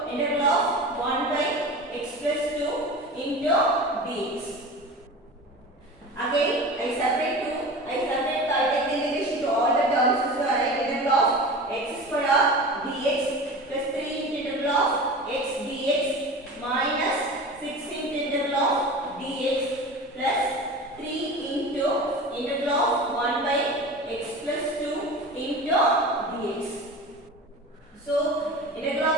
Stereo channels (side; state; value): both; normal; correlation 0.33